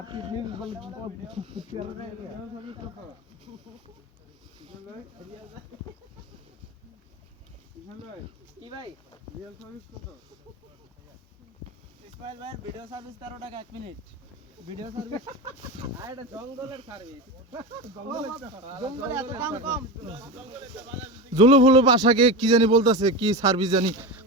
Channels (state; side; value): normal; both; correlation 0.22